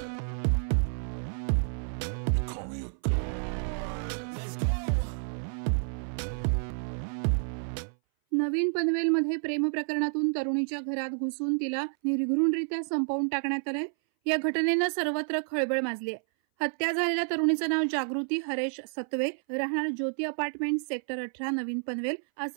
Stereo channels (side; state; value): left; silent; 58 dB below the other